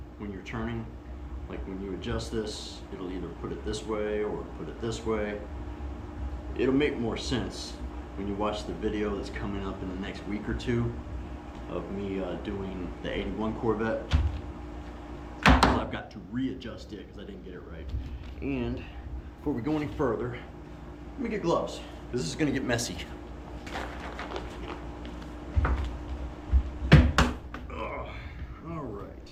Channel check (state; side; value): identical; both; correlation 1.00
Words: when you're turning. Like when you adjust this, it'll either put it this way or put it this way. It'll make more sense when you watch the video that's coming up in the next week or 2 of me doing the 81 Corvette. So I've got to readjust it because I didn't get it right. And before we go any further, let me get gloves because this is going to get messy. All right.